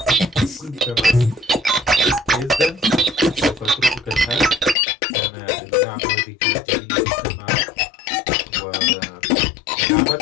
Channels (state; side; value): drops out; right; at 4.8 s